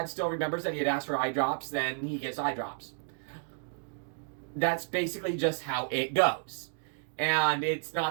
still remembers that he had asked for eye drops, then he gets eye drops. That's basically just how it goes. And it's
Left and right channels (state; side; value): silent; left; digital silence